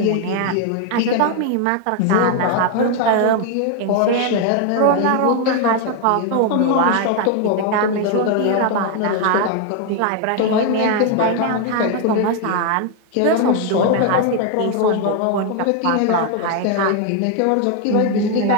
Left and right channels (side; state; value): both; different; correlation 0.01